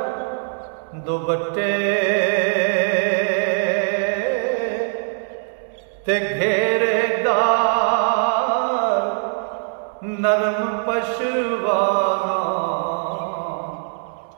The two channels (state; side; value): silent; left; digital silence